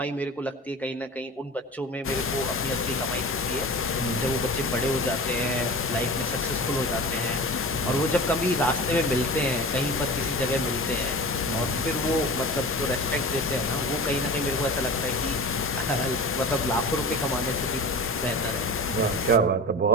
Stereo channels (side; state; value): both; normal; correlation 0.33